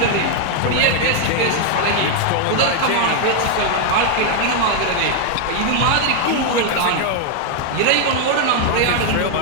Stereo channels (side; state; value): both; different; correlation 0.00